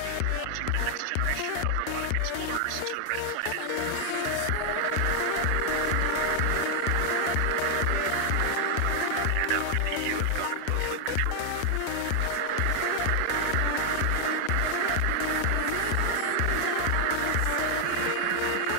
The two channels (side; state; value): both; different; correlation 0.00